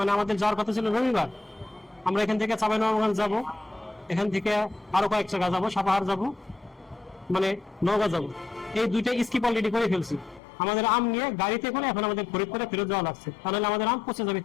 আমাদের যাওয়ার কথা ছিল রবিবার, আমরা এখান থেকে চাঁপাইনবাবগঞ্জ যাব, এখান থেকে আরো কয়েক জায়গা যাব, সাপাহার যাব, মানে নওগাঁ যাব। এই দুইটা স্কিপ অলরেডি করে ফেলছি। আমাদের আম নিয়ে গাড়িতে করে এখন আমাদের ফরিদপুরে ফেরত যাওয়া লাগছে, তাহলে আমাদের আম পচে যাবে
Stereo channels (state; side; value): drops out; right; at 10.4 s